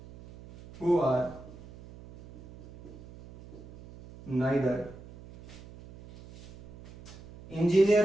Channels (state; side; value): noise; right; hum, 18 dB below the sound